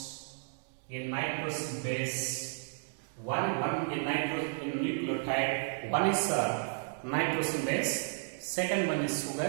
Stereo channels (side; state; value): left; silent; digital silence